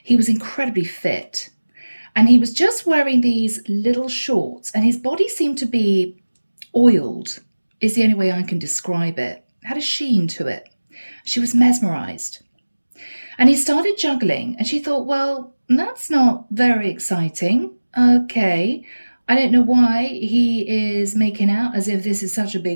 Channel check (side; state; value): both; inverted; correlation -1.00